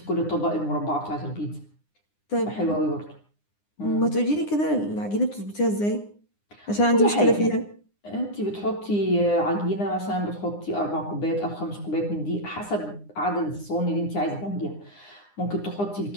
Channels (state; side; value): late; right; 9.8 ms